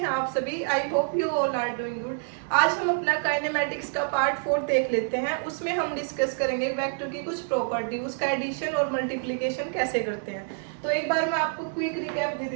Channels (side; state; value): left; silent; digital silence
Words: आप सभी? I hope you all are doing good. आज हम अपना काइनेमेटिक्स का पार्ट 4 देख लेते हैं। उसमें हम डिस्कस करेंगे वेक्टर की कुछ प्रॉपर्टी, उसका एडिशन और मल्टीप्लिकेशन कैसे करते हैं। तो एक बार मैं आपको क्विक रिकैप दे